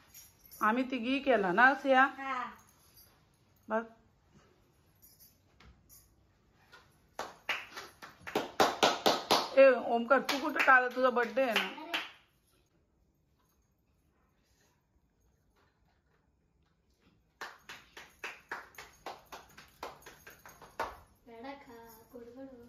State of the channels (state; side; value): identical; both; correlation 1.00